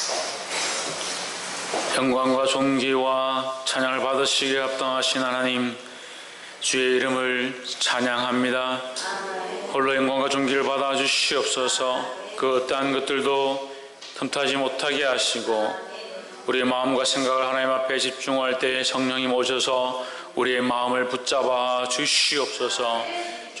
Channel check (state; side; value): identical; both; correlation 1.00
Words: 영광과 존귀와 찬양을 받으시기에 합당하신 하나님, 주의 이름을 찬양합니다. 홀로 영광과 존귀를 받아 주시옵소서. 그 어떠한 것들도 틈타지 못하게 하시고 우리의 마음과 생각을 하나님 앞에 집중할 때 성령님 오셔서 우리의 마음을 붙잡아 주시옵소서.